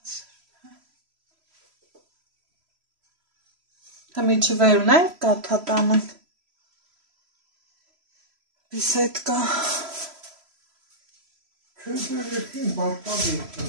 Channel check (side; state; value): left; late; 3.0 ms